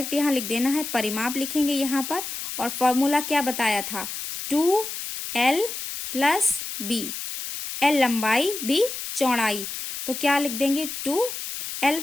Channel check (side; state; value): left; noise; hiss, 6 dB below the sound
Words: यहाँ लिख देना है, परिमाप लिखेंगे यहाँ पर, और फॉर्मूला क्या बताया था, 2l + b, l लंबाई b चौड़ाई, तो क्या लिख देंगे 2l,